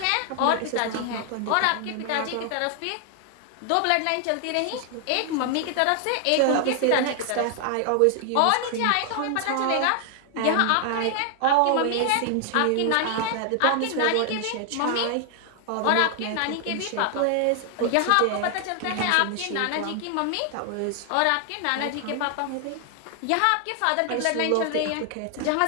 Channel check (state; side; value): different; both; correlation 0.00